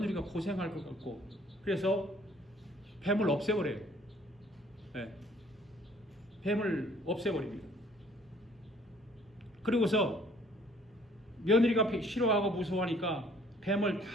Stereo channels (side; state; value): both; normal; correlation 0.59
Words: 고생할 것 같고, 그래서 뱀을 없애버려요. 네. 뱀을 없애버립니다. 그리고서 며느리가 싫어하고 무서워하니까 뱀을